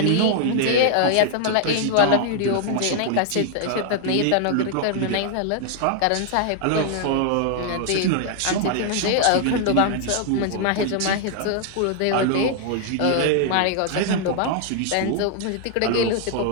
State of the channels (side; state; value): both; different; correlation 0.00